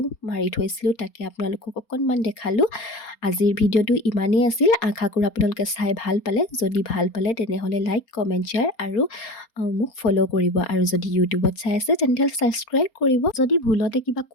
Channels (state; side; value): late; right; 4.3 ms